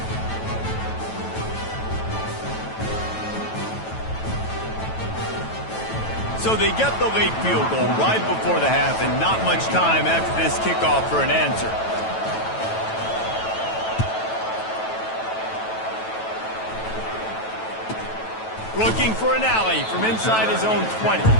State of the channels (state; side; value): late; right; 9.1 ms